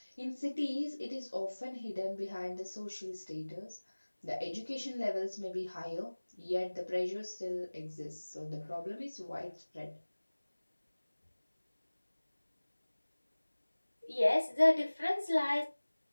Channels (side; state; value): both; inverted; correlation -1.00